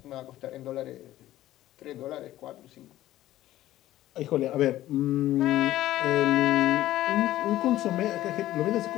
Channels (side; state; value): right; quieter; 14.5 dB